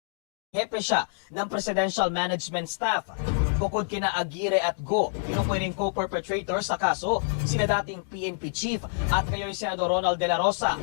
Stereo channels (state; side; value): silent; right; digital silence